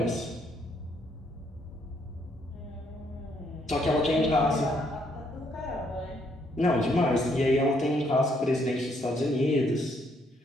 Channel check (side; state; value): both; normal; correlation 0.71